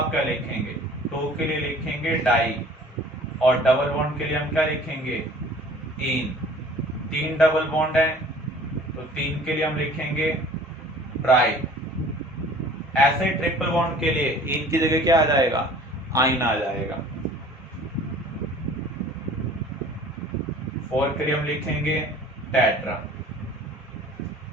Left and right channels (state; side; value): normal; both; correlation 0.49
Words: क्या लिखेंगे? 2 के लिए लिखेंगे डाई और डबल बॉन्ड के लिए हम क्या लिखेंगे? इन। 3 डबल बॉन्ड है तो 3 के लिए हम लिखेंगे ट्राई। ऐसे ट्रिपल बॉन्ड के लिए इन की जगह क्या आ जाएगा? आइन आ जाएगा। 4 के लिए हम लिखेंगे टेट्रा।